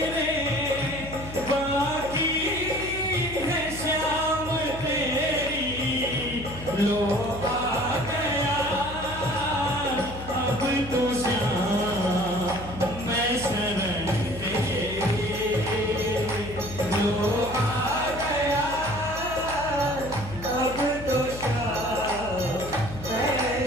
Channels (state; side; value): noise; left; hum, 12 dB below the sound